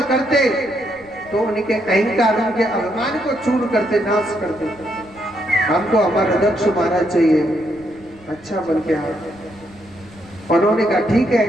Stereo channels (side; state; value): right; noise; rumble, 25 dB below the sound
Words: करते तो उनके अहंकार, उनके अभिमान को चूर करते, नाश करते। हमको हमारा दक्ष महाराज चाहिए, अच्छा बन के आए। उन्होंने कहा ठीक है,